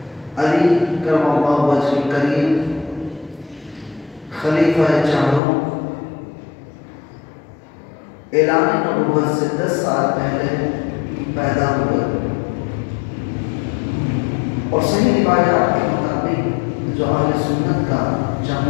علی کرم اللہ وجہ الکریم خلیفہ چاروں اعلان نبوت سے 10 سال پہلے پیدا ہوئے اور صحیح روایات کے مطابق جو اہل سنت کا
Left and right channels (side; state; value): right; drops out; at 5.4 s